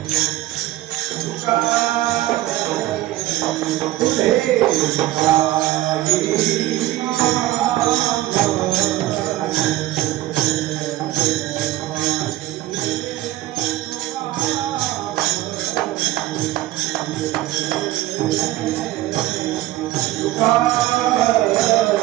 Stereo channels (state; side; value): quieter; left; 15.7 dB